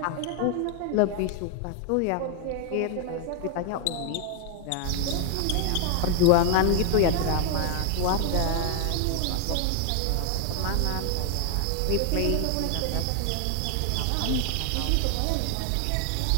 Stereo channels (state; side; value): different; both; correlation 0.00